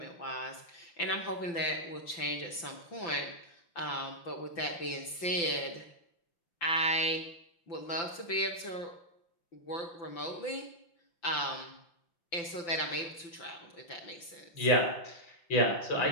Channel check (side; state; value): right; late; 5.9 ms